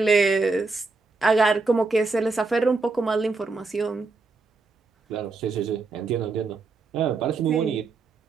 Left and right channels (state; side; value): quieter; left; 4.0 dB